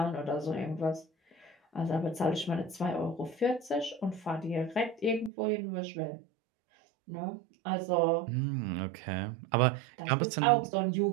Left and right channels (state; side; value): drops out; left; at 5.3 s